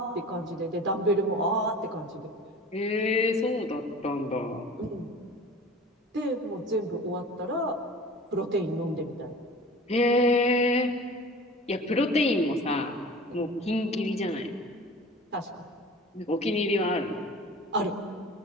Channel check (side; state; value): both; normal; correlation 0.40